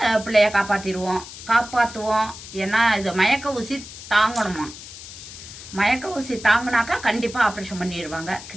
பிள்ளைய காப்பாற்றுவோம். ஏன்னா இது மயக்க ஊசி தாங்கணுமா. மயக்க ஊசி தாங்கினாக்கா கண்டிப்பாக ஆப்ரேஷன் பண்ணிடுவாங்க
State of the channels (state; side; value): noise; left; hiss, 14 dB below the sound